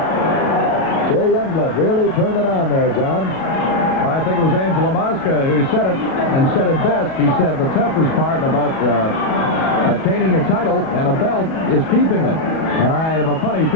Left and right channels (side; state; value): right; late; 37 ms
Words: Jay Youngblood really turned it on there, John. I think it was Angelo Mosca who said it, and said it best. He said the toughest part about attaining a title and a belt is keeping it. And I have a funny